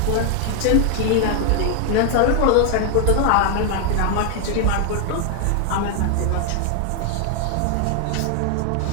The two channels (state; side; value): different; both; correlation 0.00